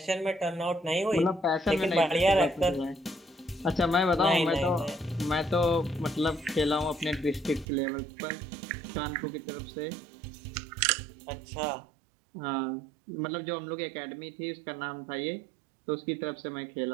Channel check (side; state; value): left; drops out; at 7.7 s